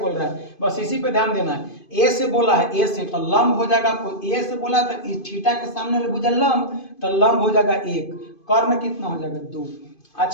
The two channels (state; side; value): late; right; 2.5 ms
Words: रहा है, बस इसी पे ध्यान देना है। ए से बोला है, ए से तो लंब हो जाएगा, आपको ए से बोला तो इस थीटा के सामने वाले भुजा लंब, तो लंब हो जाएगा 1, कर्ण कितना हो जाएगा 2।